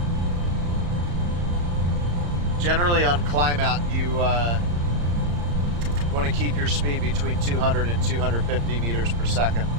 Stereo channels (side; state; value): left; late; 35 ms